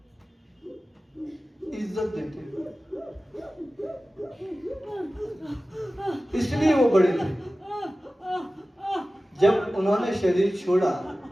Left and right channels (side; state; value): both; normal; correlation 0.96